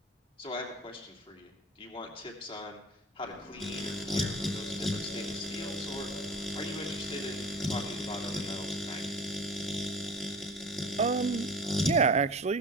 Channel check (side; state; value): both; normal; correlation 0.39